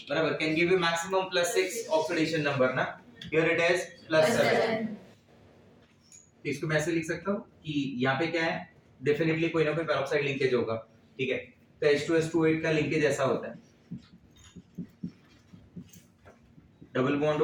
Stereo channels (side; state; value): both; identical; correlation 1.00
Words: बराबर, can give you maximum +6 oxidation number ना, हियर इट इज +7। तो इसको मैं ऐसे लिख सकता हूँ कि यहाँ पे क्या है, डेफिनेटली कोई ना कोई पेरोक्साइड लिंकेज होगा, ठीक है। तो H2S28 का लिंकेज ऐसा होता है, डबल बॉन्ड